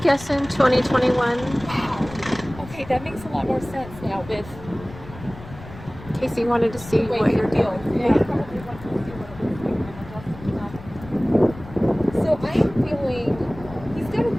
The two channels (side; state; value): left; noise; rumble, 16 dB below the sound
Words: 2021. Wow. Okay, that makes a lot more sense now with Casey wanted to see the way what you you're feel. doing. Yeah. Probably wants to see what it looks like when I'm adjusting it. So I am feeling he's got a